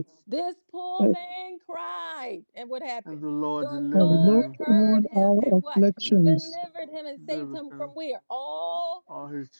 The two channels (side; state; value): both; inverted; correlation -1.00